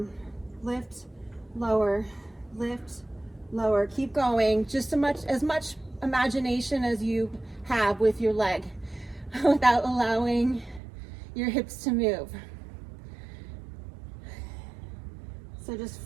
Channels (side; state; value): left; drops out; at 10.8 s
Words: lift, lower, lift, lower. Keep going, just as much imagination as you have with your leg without allowing your hips to move. So just